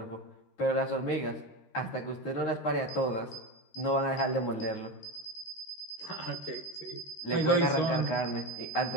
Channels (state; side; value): late; right; 13 ms